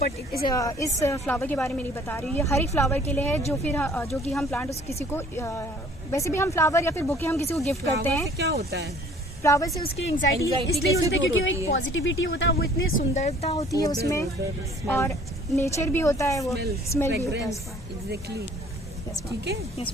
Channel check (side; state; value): both; normal; correlation 0.54